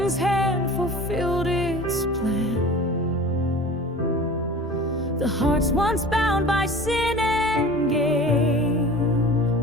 hand fulfilled its plan. The hearts once bound by sin and gain,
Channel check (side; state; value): both; normal; correlation 0.39